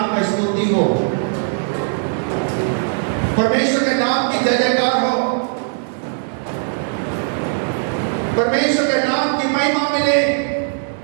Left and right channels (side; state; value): left; silent; digital silence